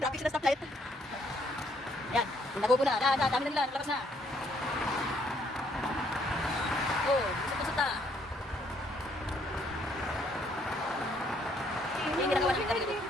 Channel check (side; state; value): both; normal; correlation 0.68